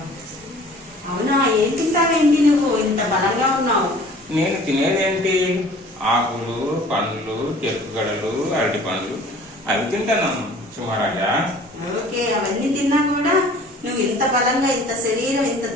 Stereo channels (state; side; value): normal; both; correlation 0.49